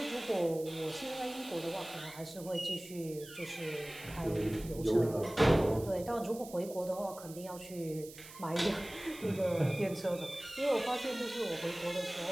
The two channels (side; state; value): right; noise; hiss, 16 dB below the sound